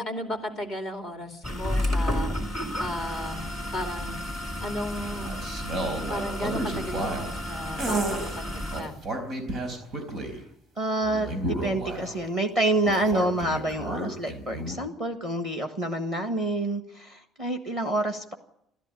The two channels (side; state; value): both; normal; correlation 0.56